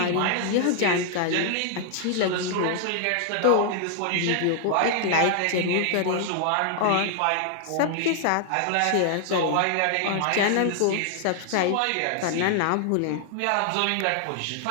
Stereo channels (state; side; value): different; both; correlation 0.00